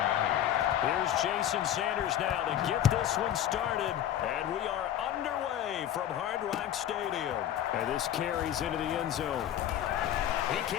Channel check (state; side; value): quieter; right; 11.1 dB